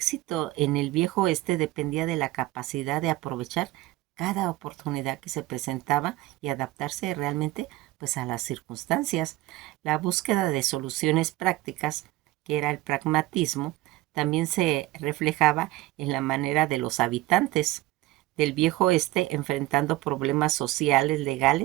en el viejo oeste dependía de la capacidad de aprovechar cada oportunidad que se presentaba y adaptarse realmente pues a las circunstancias. La búsqueda de soluciones prácticas, que era el pragmatismo, también se reflejaba en la manera de los habitantes del viejo oeste enfrentando problemas sociales,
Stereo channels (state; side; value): quieter; left; 17.4 dB